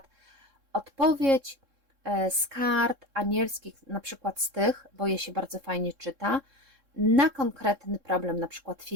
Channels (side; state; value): left; late; 3.7 ms